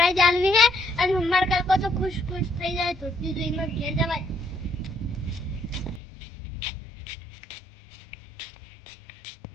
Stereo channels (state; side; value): drops out; right; at 6.0 s